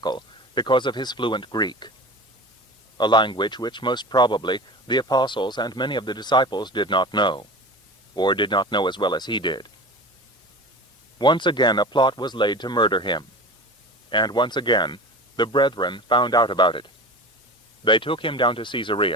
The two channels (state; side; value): normal; both; correlation 0.33